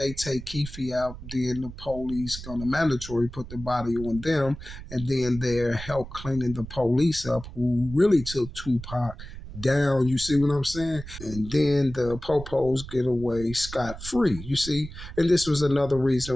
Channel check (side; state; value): right; noise; rumble, 12 dB below the sound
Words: take Keefe out, then the police gonna mandatory put the body on them, and then they're help cleaning the police up who really took Tupac down. You see what I'm saying? And then the popos get away scot free. You see, and this was another